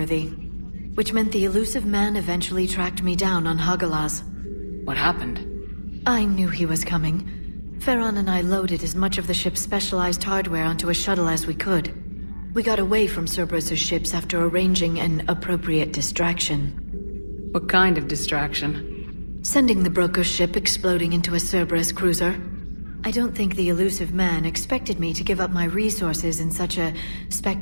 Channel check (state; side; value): inverted; both; correlation -1.00